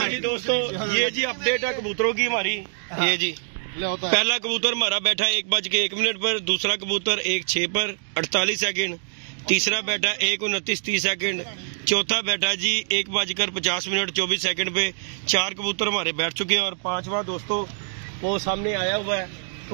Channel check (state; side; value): silent; left; digital silence